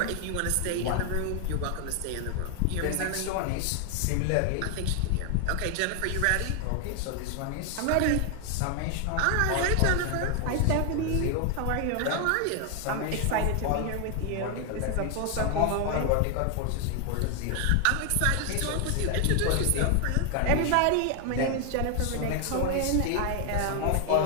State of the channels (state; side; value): different; both; correlation 0.00